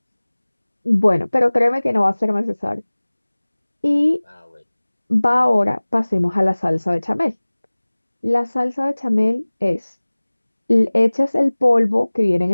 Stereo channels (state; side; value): inverted; both; correlation -1.00